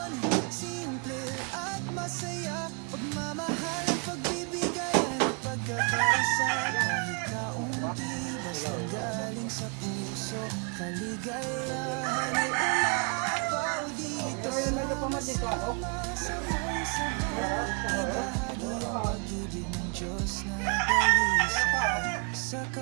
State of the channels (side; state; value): left; quieter; 36.5 dB